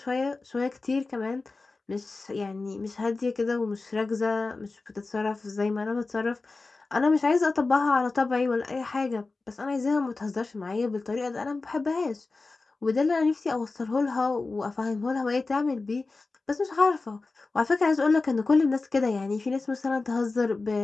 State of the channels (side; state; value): right; quieter; 3.7 dB